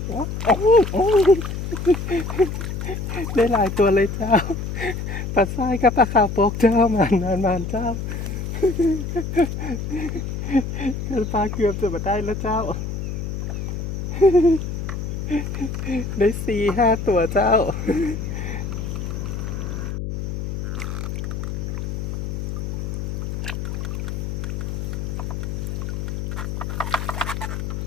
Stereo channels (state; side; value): noise; left; hum, 4 dB below the sound